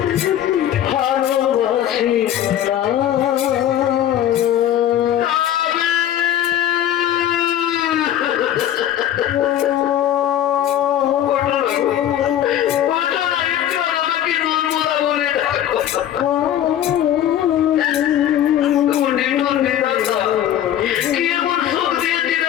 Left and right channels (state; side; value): quieter; right; 11.3 dB